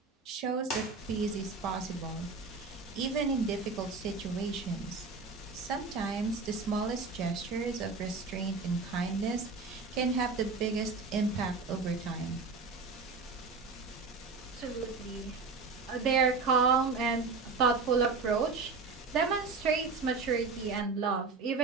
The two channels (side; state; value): left; quieter; 4.3 dB